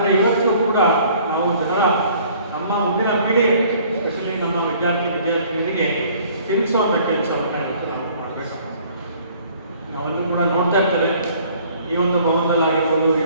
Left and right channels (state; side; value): inverted; both; correlation -0.56